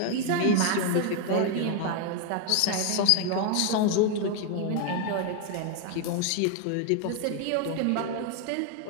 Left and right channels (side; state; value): both; different; correlation 0.01